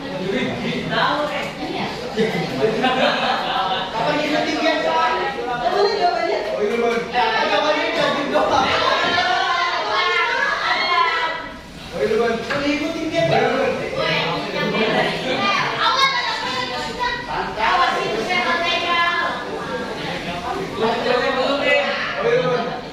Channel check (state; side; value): identical; both; correlation 1.00